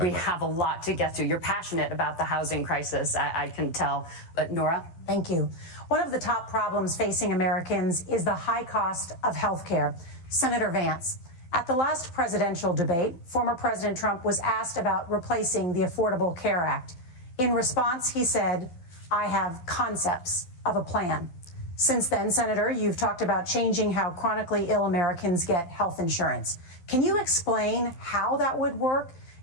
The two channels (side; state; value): right; late; 12 ms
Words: have a lot to get to. You're passionate about the housing crisis, I can tell. But Nora? Thank you. One of the top problems facing Americans is the high cost of health care. Senator Vance, at the last presidential debate, former President Trump was asked about replacing the Affordable Care Act. In response, he said, "I have concepts of a plan." Since then, Senator, you've talked about changing how chronically ill Americans get health insurance. Can you explain how that would work?